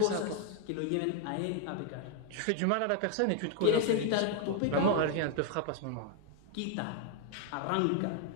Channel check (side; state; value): both; different; correlation 0.00